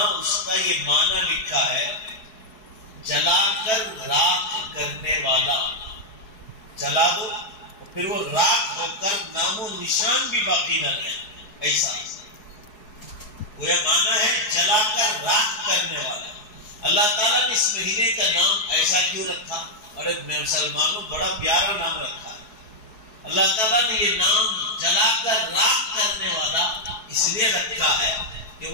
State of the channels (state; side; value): late; right; 4.7 ms